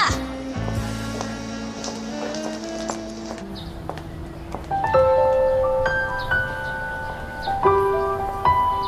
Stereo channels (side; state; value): both; identical; correlation 1.00